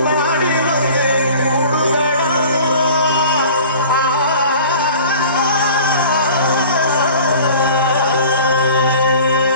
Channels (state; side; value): inverted; both; correlation -0.44